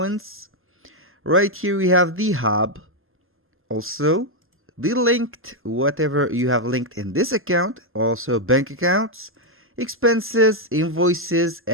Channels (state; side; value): normal; both; correlation 0.01